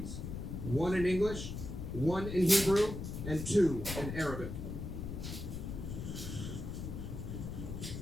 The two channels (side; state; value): left; noise; rumble, 6 dB below the sound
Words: 1 in English, 1 in Hebrew, and 2 in Arabic.